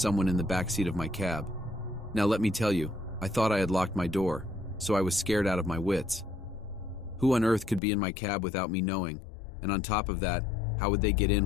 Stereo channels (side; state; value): right; drops out; at 7.8 s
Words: in the backseat of my cab. Now let me tell you, I thought I had locked my door, so I was scared out of my wits. Who on earth could be in my cab without me knowing? And on top of that, how would they get